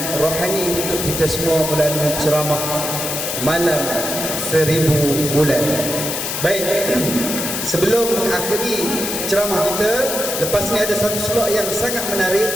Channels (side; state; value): left; noise; hiss, 3 dB below the sound